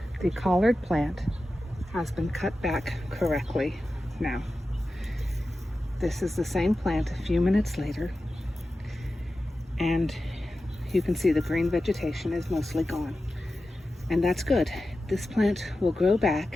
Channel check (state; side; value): normal; both; correlation 0.93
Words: the collard plant has been cut back correctly now. This is the same plant a few minutes later, and you can see the green vegetation is mostly gone. And that's good. This plant will grow